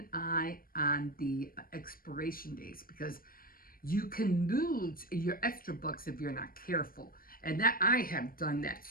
eye on the expiration dates, because you can lose your extra bucks if you're not careful. And that I have done that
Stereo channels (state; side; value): late; right; 0.42 ms